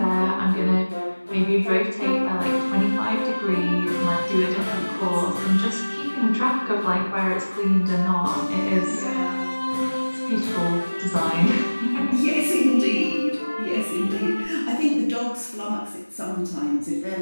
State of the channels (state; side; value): inverted; both; correlation -1.00